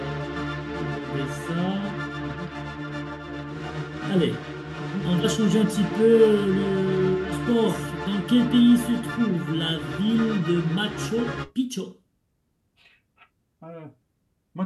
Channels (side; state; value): both; identical; correlation 1.00